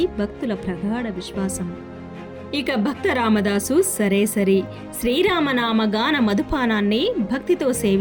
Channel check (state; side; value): identical; both; correlation 1.00